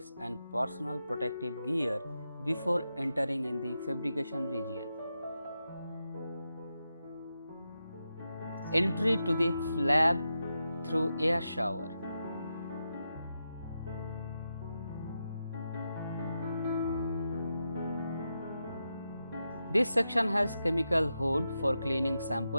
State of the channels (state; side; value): inverted; both; correlation -0.88